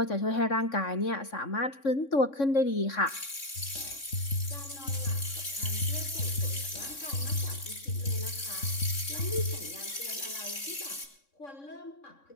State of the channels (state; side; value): late; right; 3.6 ms